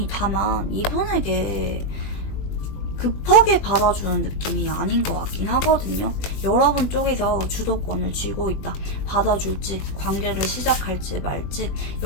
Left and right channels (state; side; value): late; right; 20 ms